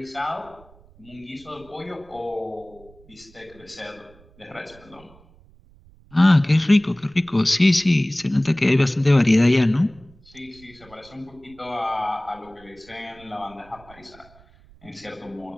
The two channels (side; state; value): right; noise; rumble, 26 dB below the sound